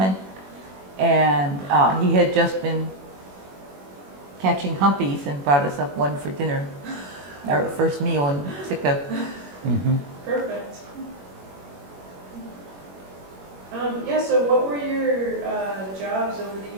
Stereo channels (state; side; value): late; left; 21 ms